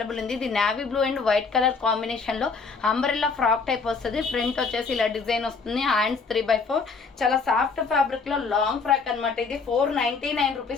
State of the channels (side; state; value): right; quieter; 4.8 dB